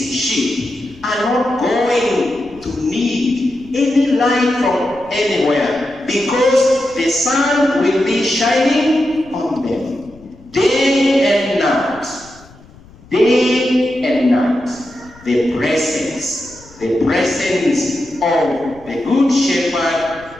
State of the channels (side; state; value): left; noise; rumble, 24 dB below the sound